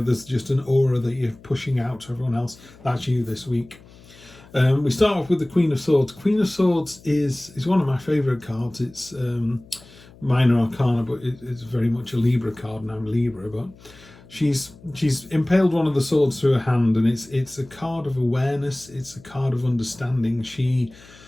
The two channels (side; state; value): left; noise; hum, 23 dB below the sound